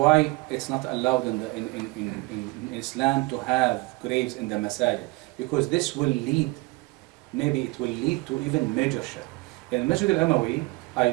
it's not allowed in Islam to have graves in the masajid, because this will lead, maybe it will lead to even major shirk. In Masjid al-Umawi, I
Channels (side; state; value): left; quieter; 23.6 dB